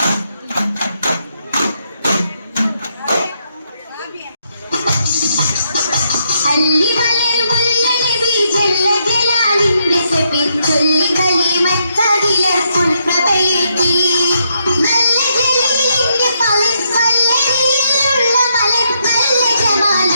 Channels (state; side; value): inverted; both; correlation -0.77